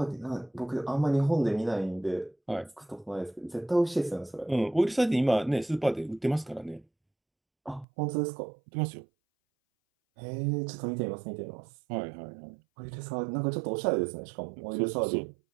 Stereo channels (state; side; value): drops out; left; at 7.9 s